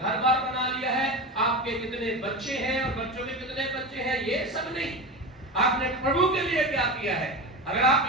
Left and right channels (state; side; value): normal; both; correlation 0.24